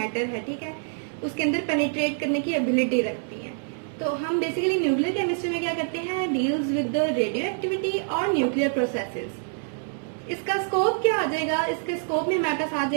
है, ठीक है, उसके अंदर पेनिट्रेट करने की एबिलिटी रखती हैं। तो हम बेसिकली न्यूक्लियर केमिस्ट्री में क्या करते हैं, deals with the radio activity और न्यूक्लियर प्रोसेसेस। इसका स्कोप क्या आ जाएगा, इसके स्कोप में हमारे पास आ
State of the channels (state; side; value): silent; left; digital silence